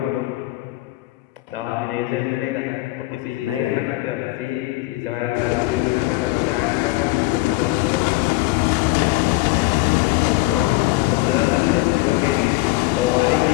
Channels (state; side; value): quieter; right; 20.3 dB